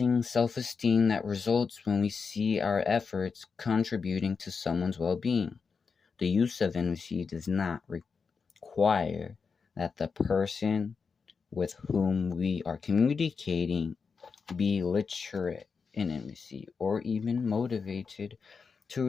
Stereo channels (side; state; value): right; quieter; 5.3 dB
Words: self-esteem that results when we see our efforts contributing to someone's well-being. The use of envy does not require that the person with whom we are communicating be literate in envy or even motivated to